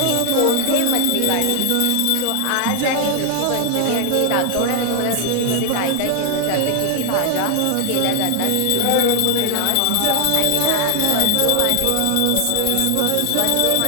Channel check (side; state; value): both; different; correlation 0.00